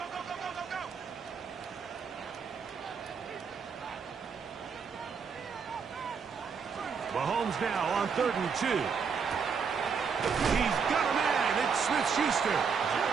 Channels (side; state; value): left; quieter; 6.0 dB